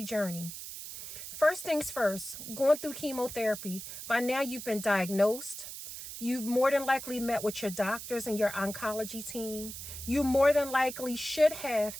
journey. First things first, going through chemotherapy, by now you've been diagnosed. You've more than likely met with your doctors and your oncology team. You more than likely should have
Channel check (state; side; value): noise; right; hiss, 10 dB below the sound